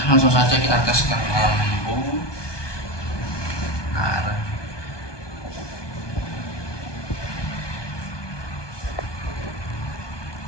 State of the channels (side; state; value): right; late; 1.2 ms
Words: langsung saja kita tes ke lampu. Nah,